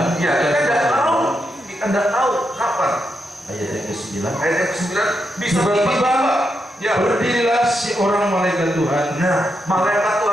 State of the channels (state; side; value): normal; both; correlation 0.83